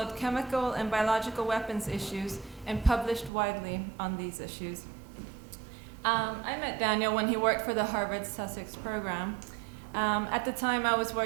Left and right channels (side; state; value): left; drops out; at 3.3 s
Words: chemical and biological weapons issues and published widely on these issues. I met Daniel when he worked for the Harvard Sussex program. At the time, I was